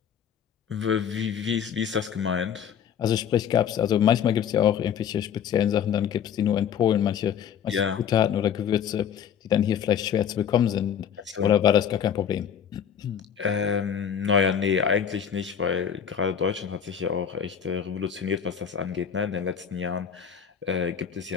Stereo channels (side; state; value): right; quieter; 8.2 dB